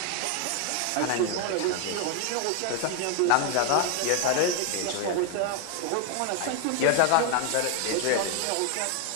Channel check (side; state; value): both; different; correlation 0.01